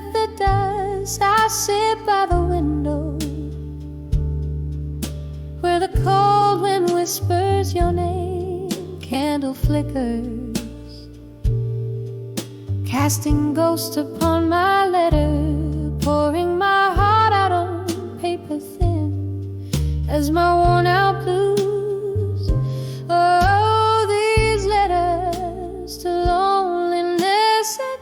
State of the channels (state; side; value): identical; both; correlation 1.00